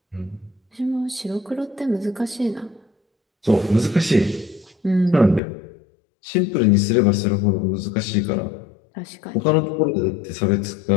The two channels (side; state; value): right; drops out; at 5.4 s